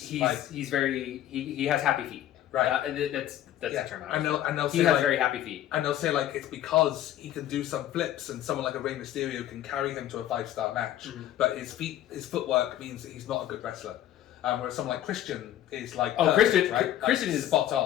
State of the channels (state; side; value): quieter; right; 12.4 dB